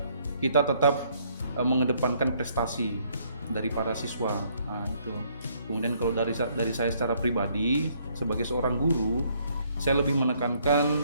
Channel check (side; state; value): both; inverted; correlation -0.67